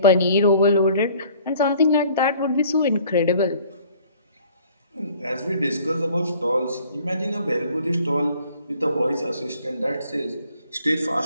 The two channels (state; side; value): inverted; both; correlation -0.55